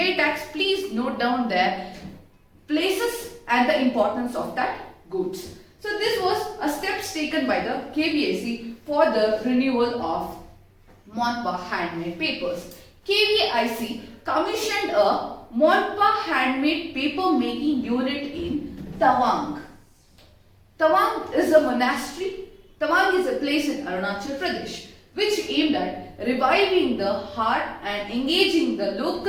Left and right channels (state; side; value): identical; both; correlation 1.00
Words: tax, please note down their places and the importance of that goods. So this was a steps taken by the KVIC for the renewal of Monpa handmade papers. KVIC commissioned a Monpa handmade paper making unit in Tawang. Tawang is a monastery. Tawang is a place in Arunachal Pradesh which aimed at reviving the heart and engaging the